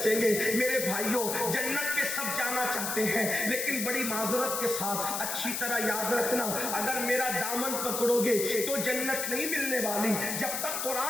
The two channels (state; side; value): noise; left; hiss, 2 dB below the sound